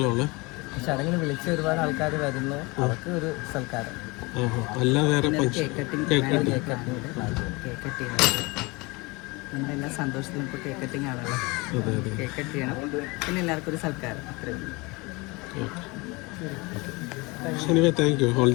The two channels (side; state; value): right; quieter; 25.5 dB